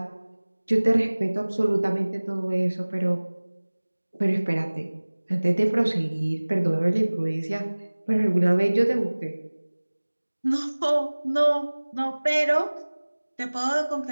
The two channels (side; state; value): both; inverted; correlation -1.00